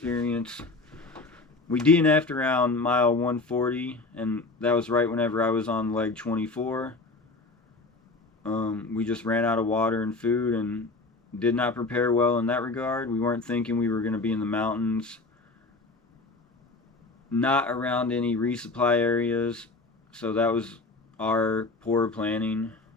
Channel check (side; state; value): right; quieter; 3.4 dB